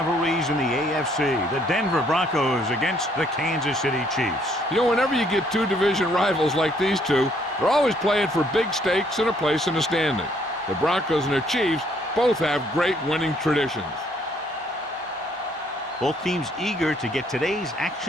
in the AFC, the Denver Broncos against the Kansas City Chiefs. You know, whenever you get two division rivals like these two, they're always playing for big stakes and a place in the standing. The Broncos and the Chiefs both have great winning traditions. Both teams eager to get today's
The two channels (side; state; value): both; normal; correlation 0.66